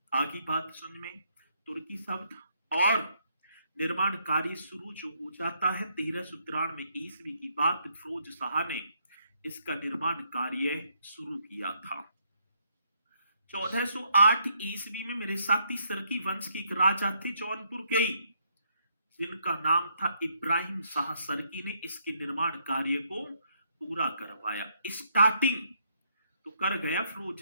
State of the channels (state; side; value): inverted; both; correlation -0.73